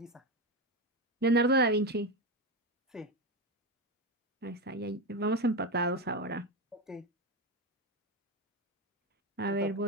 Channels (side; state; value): both; normal; correlation 0.15